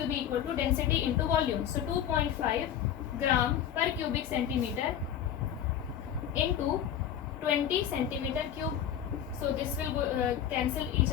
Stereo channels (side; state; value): right; quieter; 9.8 dB